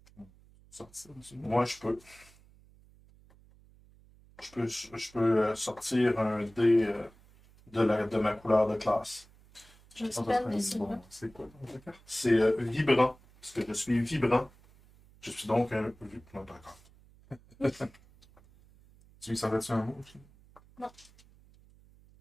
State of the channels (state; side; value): noise; right; hum, 26 dB below the sound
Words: Sortir du Moi, je peux. Je peux sortir un dé de ma couleur de classe. J'espère que c'est là. C'est quoi ta carte? C'est vibrant. Parce que je suis vibrant. Je suis donc un. Non, d'accord. Tu lui savais-tu un mot? Non.